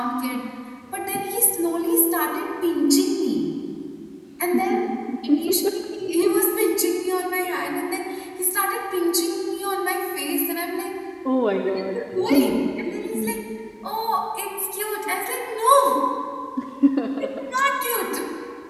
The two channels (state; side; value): identical; both; correlation 1.00